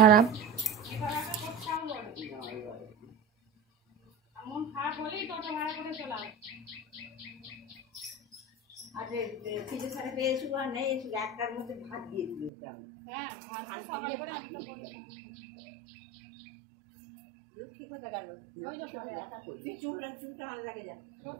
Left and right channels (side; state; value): left; drops out; at 12.5 s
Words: লক্ষ্মী কোথায় গেল? চুলটা ভালো লাগে যা